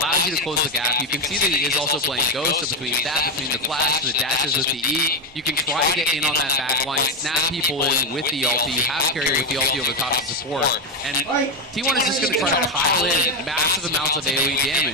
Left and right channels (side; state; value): both; normal; correlation 0.09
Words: you to close the gap. You can see that he is also playing Ghost, so between that, between the flash, the dashes with the E, you can try to get in on that back line, snap people in with the ulti. You have carry with the ulti over top of support. And T1 is just going to try to pile in massive amounts of AoE